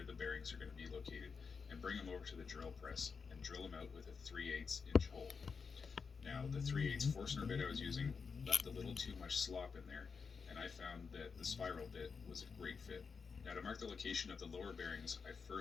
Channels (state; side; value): quieter; right; 5.4 dB